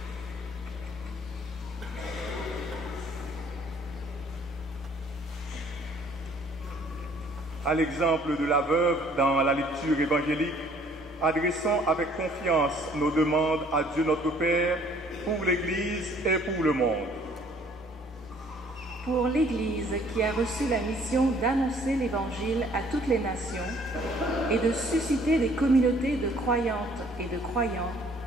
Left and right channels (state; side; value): normal; both; correlation 0.59